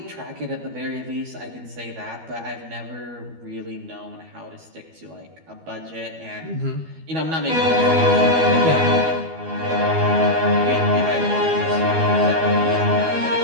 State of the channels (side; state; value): left; late; 12 ms